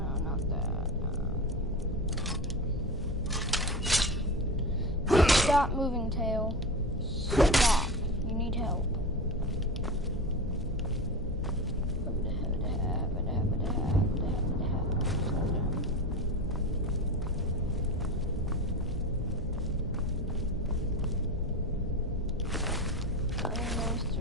not that. Stop moving, tail. Stop. You need help.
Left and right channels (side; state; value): both; normal; correlation 0.25